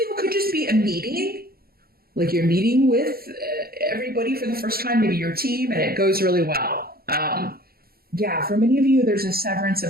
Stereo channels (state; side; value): late; left; 0.44 ms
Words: could just be a meeting, like you're meeting with everybody for the first time, maybe your team, and it goes really well. Yeah, for many of you, there's a severance